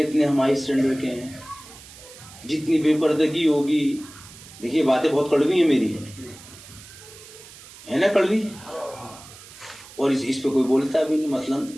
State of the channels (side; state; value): right; noise; hiss, 19 dB below the sound